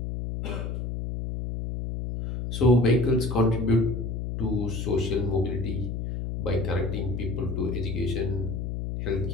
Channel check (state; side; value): noise; left; hum, 4 dB below the sound